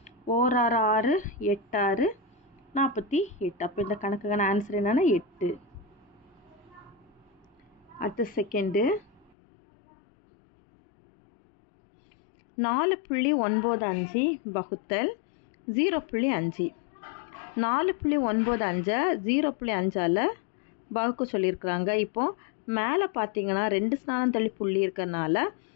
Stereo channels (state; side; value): drops out; right; at 9.3 s